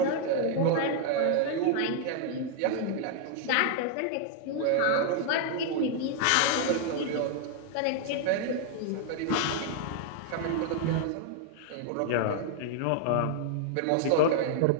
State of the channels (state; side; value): different; both; correlation 0.00